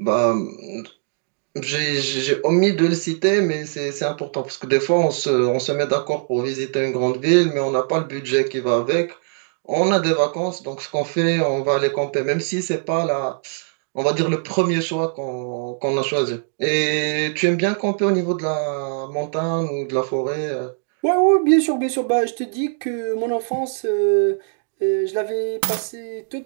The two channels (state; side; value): silent; left; digital silence